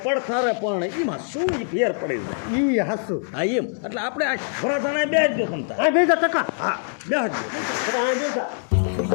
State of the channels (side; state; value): right; silent; 63 dB below the other